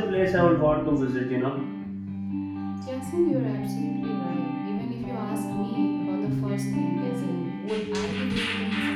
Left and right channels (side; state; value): both; identical; correlation 1.00